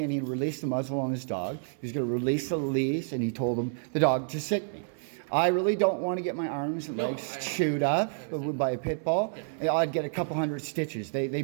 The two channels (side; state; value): left; silent; 58 dB below the other